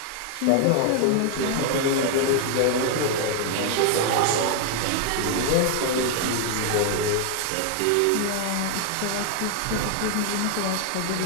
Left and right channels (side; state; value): both; different; correlation 0.00